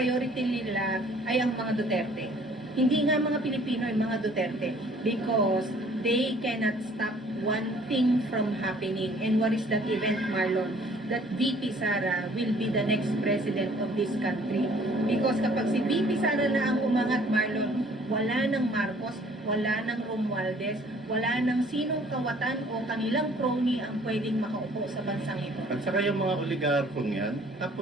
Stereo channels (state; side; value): normal; both; correlation 0.57